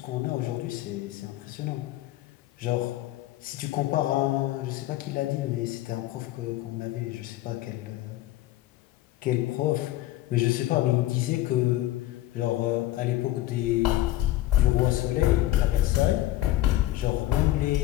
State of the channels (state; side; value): quieter; right; 15.3 dB